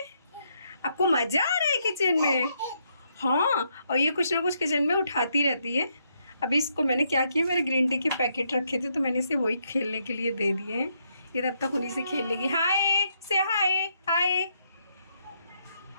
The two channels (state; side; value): inverted; both; correlation -0.76